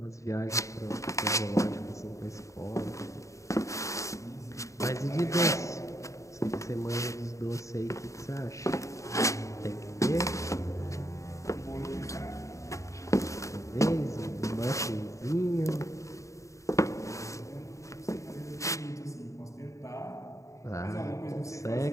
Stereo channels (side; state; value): right; late; 0.15 ms